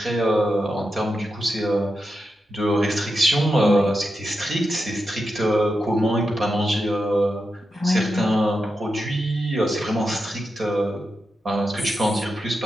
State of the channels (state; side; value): normal; both; correlation 0.88